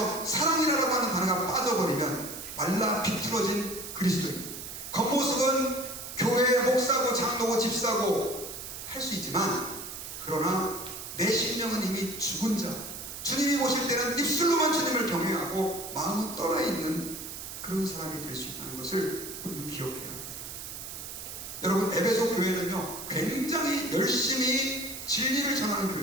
사랑이라고 하는 단어가 빠져버리면 말라 비틀어진 그리스도인, 겉모습은 교회의 목사고 장로고 집사고 할 수 있지만, 그러나 내 심령은 이미 죽은 자, 주님이 보실 때는 입술로만 주님을 경외하고 마음은 떠나있는 그런 사람이 될 수 있다는 것을 우리는 기억해야 합니다. 여러분, 에베소 교회는요, 굉장히 열심히 진리를 전하는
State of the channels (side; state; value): right; noise; hiss, 9 dB below the sound